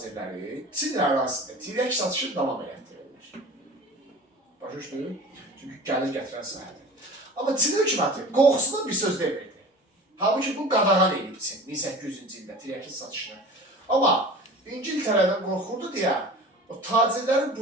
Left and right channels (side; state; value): both; normal; correlation 0.39